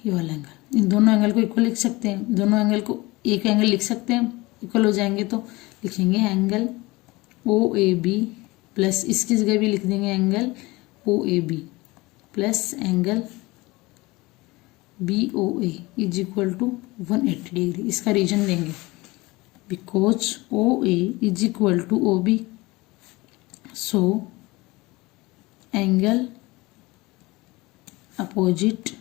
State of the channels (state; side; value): quieter; right; 22.0 dB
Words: ये वाला एंगल, इन दोनों एंगल को इक्वल लिख सकते हैं। दोनों एंगल को एक एंगल लिख सकते हैं, इक्वल हो जाएंगे तो लिखेंगे angle O A B plus इसकी जगह भी लिख देंगे angle O A B plus angle B O A is equal to 180 degree. इसका रीजन देंगे because O A is equal to O B, so angle opposite